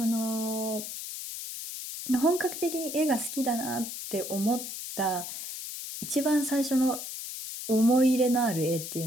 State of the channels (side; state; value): left; noise; hiss, 8 dB below the sound